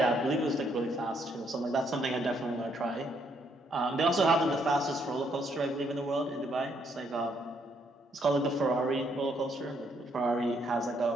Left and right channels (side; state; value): both; normal; correlation 0.72